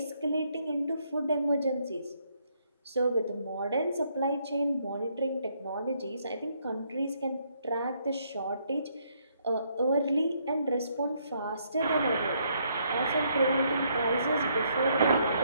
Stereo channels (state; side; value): inverted; both; correlation -0.72